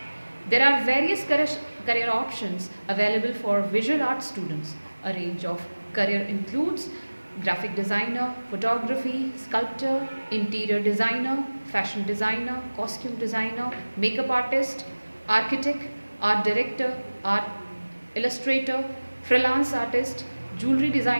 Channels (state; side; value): inverted; both; correlation -1.00